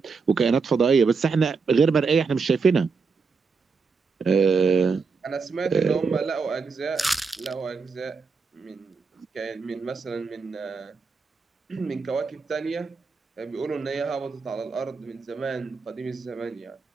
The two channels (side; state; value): left; quieter; 4.9 dB